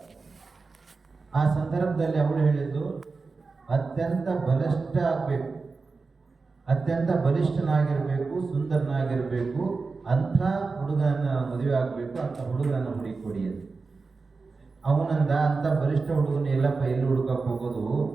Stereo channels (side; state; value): left; quieter; 4.2 dB